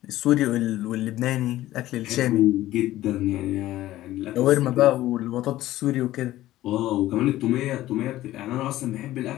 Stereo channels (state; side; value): quieter; right; 15.2 dB